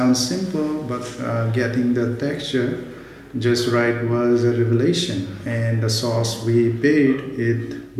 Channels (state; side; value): identical; both; correlation 1.00